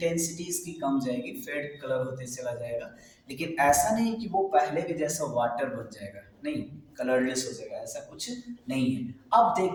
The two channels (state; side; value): identical; both; correlation 1.00